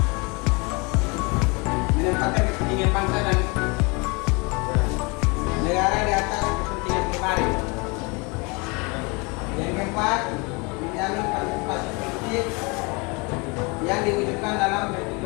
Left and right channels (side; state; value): right; quieter; 29.0 dB